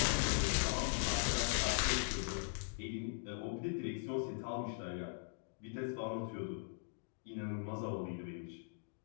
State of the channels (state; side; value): silent; right; digital silence